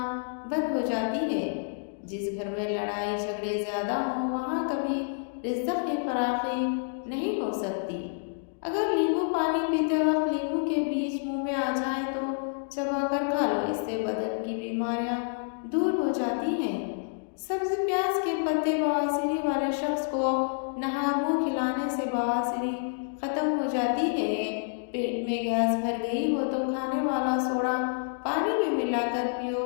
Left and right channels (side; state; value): right; silent; digital silence